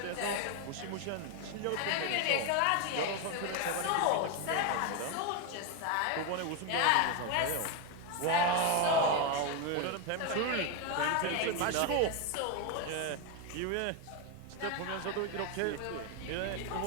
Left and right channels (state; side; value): different; both; correlation 0.02